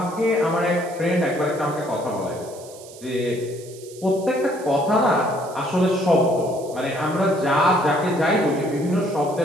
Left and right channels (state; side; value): noise; right; hiss, 20 dB below the sound